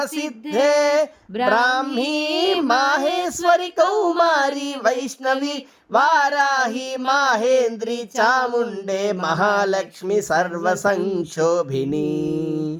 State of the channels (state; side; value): identical; both; correlation 1.00